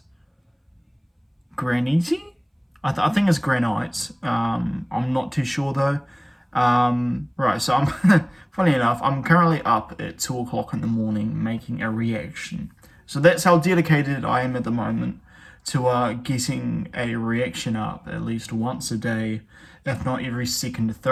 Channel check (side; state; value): both; identical; correlation 1.00